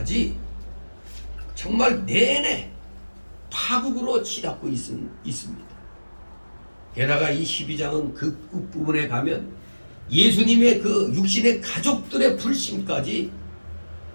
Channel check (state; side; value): inverted; both; correlation -1.00